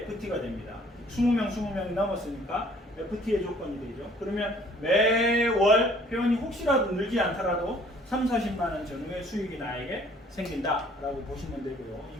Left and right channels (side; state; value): both; normal; correlation 0.57